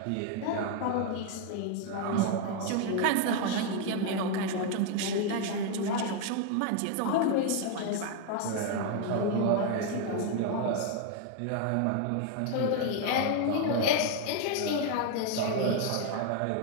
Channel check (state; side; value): different; both; correlation 0.01